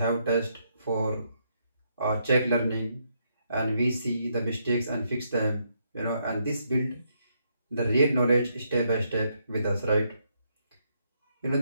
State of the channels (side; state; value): both; inverted; correlation -0.76